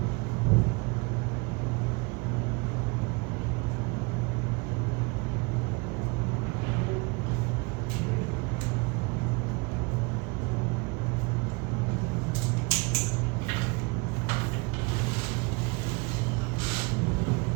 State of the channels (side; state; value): left; quieter; 28.9 dB